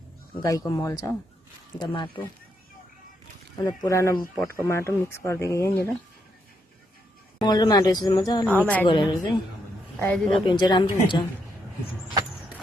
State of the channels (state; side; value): normal; both; correlation 0.78